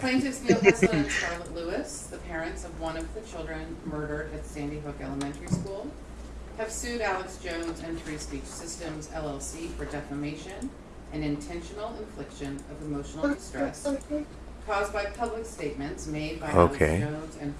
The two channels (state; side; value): identical; both; correlation 1.00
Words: Neil Heslin and Charlotte Lewis, the parents of one of the children murdered at Sandy Hook Elementary School, have sued Alex Jones and Free Speech Systems, LLC for defamation an intentional infliction of emotional distress caused by public statements made by Okay. Alex Jones and